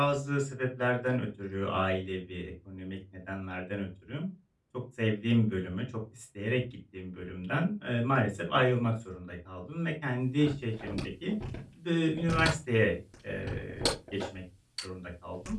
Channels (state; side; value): identical; both; correlation 1.00